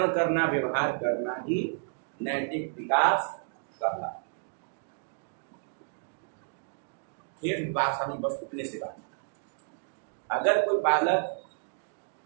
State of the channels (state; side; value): silent; left; digital silence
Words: करना, व्यवहार करना ही नैतिक विकास कहलाता है। फिर बात हम बस उतने से बात, अगर कोई बालक,